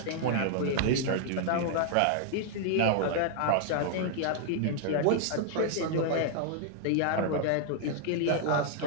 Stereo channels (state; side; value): different; both; correlation 0.00